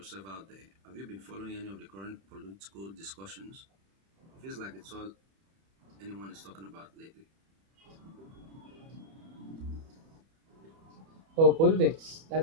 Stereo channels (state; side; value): late; left; 31 ms